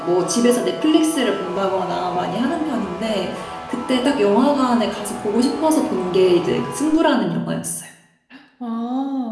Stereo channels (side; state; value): both; identical; correlation 1.00